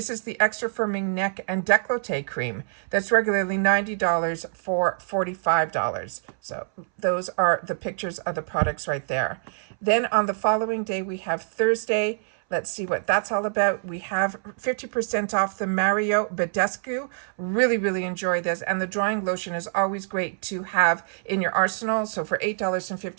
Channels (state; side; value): silent; left; 61 dB below the other